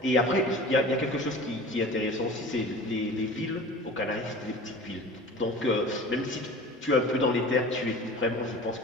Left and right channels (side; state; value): both; normal; correlation 0.39